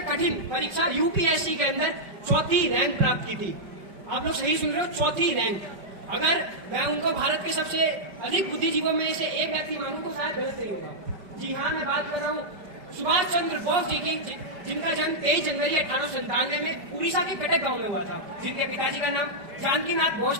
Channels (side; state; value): left; late; 5.1 ms